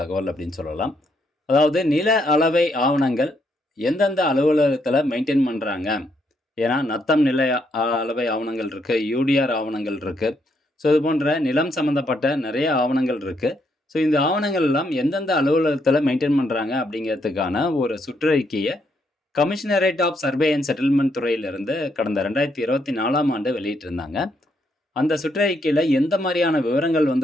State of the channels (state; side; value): normal; both; correlation 0.75